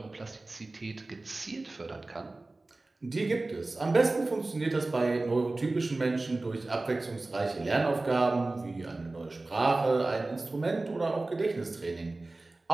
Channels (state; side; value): quieter; left; 3.1 dB